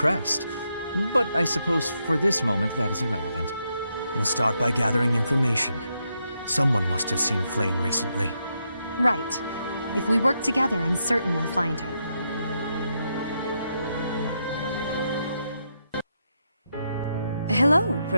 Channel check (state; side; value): inverted; both; correlation -0.81